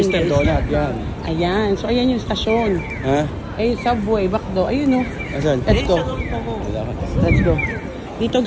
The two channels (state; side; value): identical; both; correlation 1.00